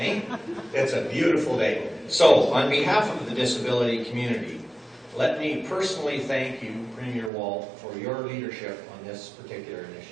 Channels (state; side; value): drops out; left; at 7.3 s